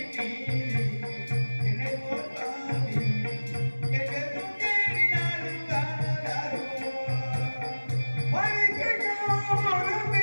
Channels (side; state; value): both; inverted; correlation -1.00